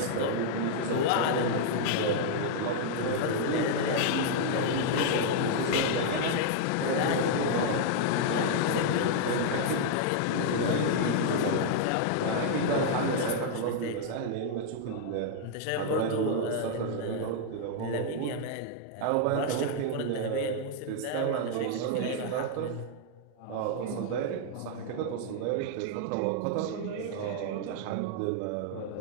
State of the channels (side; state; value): both; different; correlation -0.01